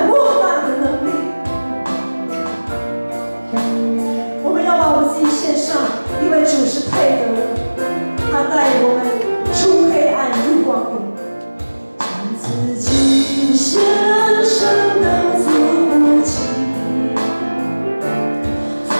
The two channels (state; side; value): inverted; both; correlation -1.00